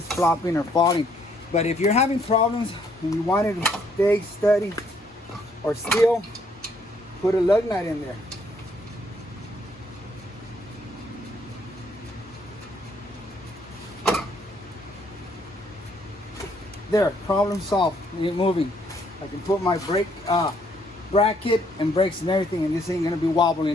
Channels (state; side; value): normal; both; correlation 0.68